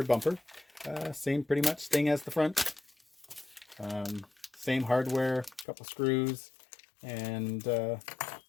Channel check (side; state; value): right; drops out; at 5.7 s